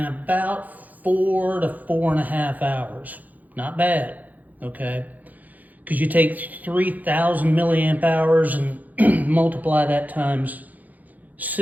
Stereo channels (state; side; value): late; left; 0.080 ms